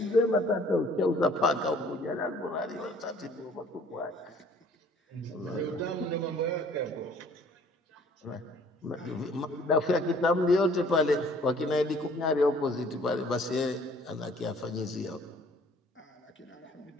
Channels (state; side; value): normal; both; correlation 0.56